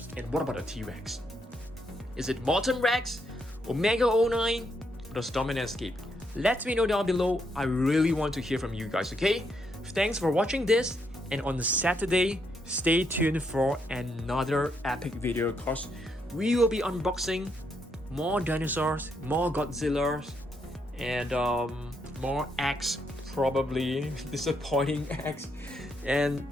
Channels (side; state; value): both; normal; correlation 0.77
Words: And what about the T-Rex? Is it Molten Rex, Omega09, or the Stomp N Escape? Let me know down below. I really want to hear from you guys, okay? Thanks for watching this, and on Saturday, stay tuned for another epic video because we will be unboxing more dinosaurs, more Godzillas, and more eggs, probably disappointing eggs, and